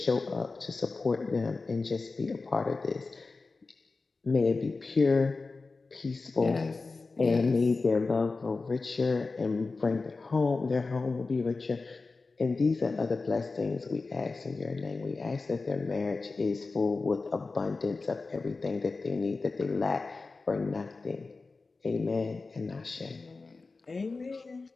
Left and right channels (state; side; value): quieter; right; 3.9 dB